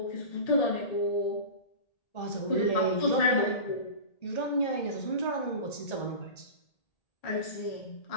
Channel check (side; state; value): right; late; 1.8 ms